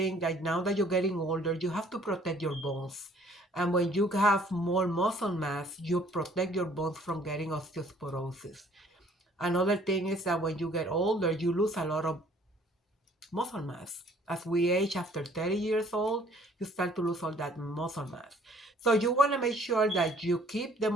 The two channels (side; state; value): both; normal; correlation 0.58